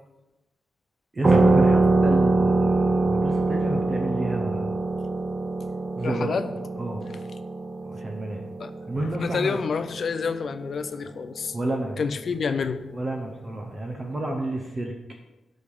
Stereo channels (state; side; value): normal; both; correlation 0.90